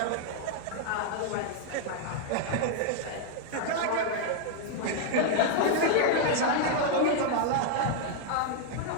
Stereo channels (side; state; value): both; different; correlation 0.00